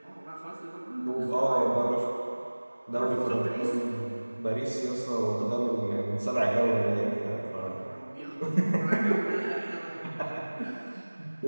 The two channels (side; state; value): both; inverted; correlation -1.00